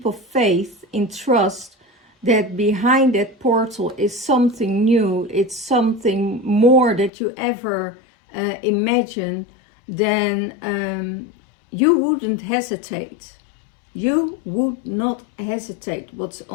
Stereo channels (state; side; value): drops out; right; at 7.1 s